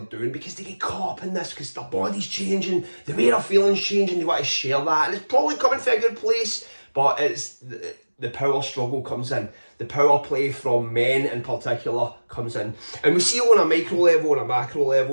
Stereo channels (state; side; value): inverted; both; correlation -1.00